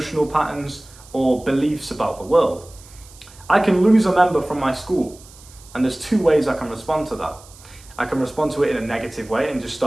patterns, or beliefs about the world. I can lose a member from my school, and there's 2 ways I can respond to that. I can respond to it in a negative way and just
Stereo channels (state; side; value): noise; right; hiss, 22 dB below the sound